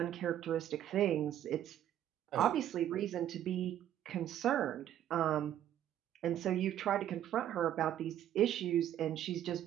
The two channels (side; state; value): left; quieter; 11.3 dB